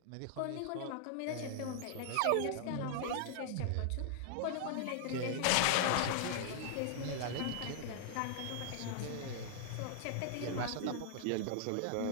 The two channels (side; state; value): both; different; correlation 0.00